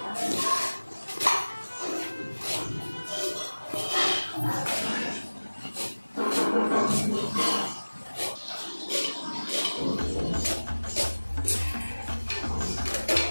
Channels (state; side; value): inverted; both; correlation -1.00